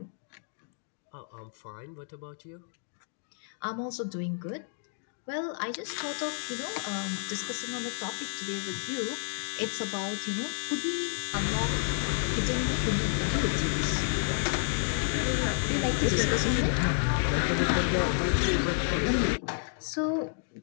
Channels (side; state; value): right; silent; digital silence